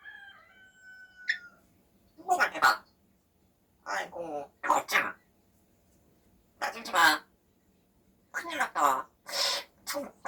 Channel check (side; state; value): both; identical; correlation 1.00